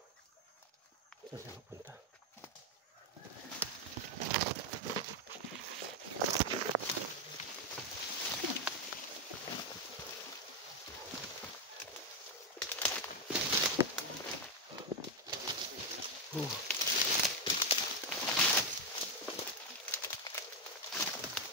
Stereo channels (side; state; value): both; normal; correlation 0.05